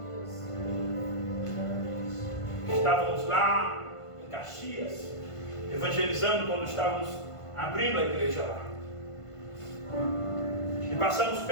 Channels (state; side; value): late; right; 1.5 ms